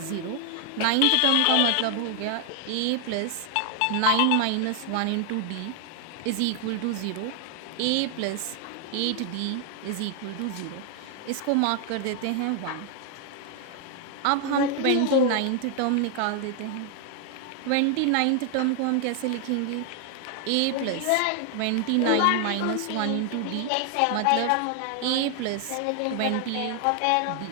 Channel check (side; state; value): both; different; correlation 0.00